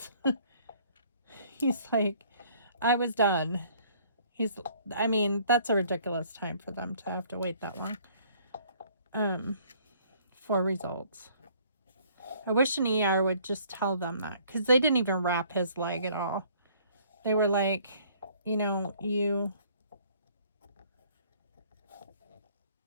He's like, I was done. I mean, that's a ridiculous time for them to have to wait that long for results. I wish an ER would just tell them that, because they didn't even wrap his leg at all. They were like, you know,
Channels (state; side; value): inverted; both; correlation -0.59